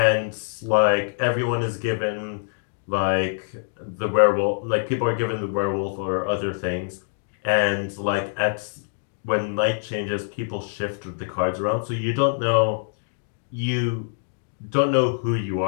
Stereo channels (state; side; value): silent; right; digital silence